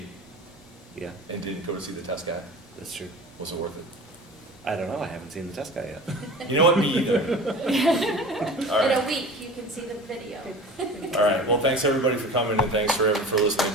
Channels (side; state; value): both; normal; correlation 0.37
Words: Yeah, and didn't go to see the test guy. that's true. Was it worth it? I don't know, I haven't seen the test guy yet. You know what, me either. All In right. a week, you can see the video. All right, well, thanks everybody for coming and thanks for